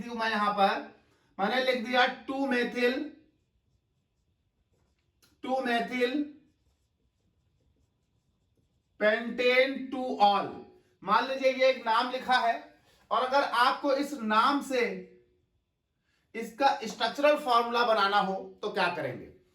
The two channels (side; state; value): both; identical; correlation 1.00